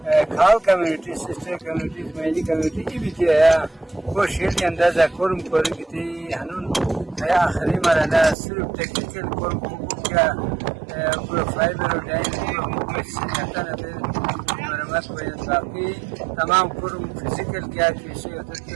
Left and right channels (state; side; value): drops out; left; at 8.3 s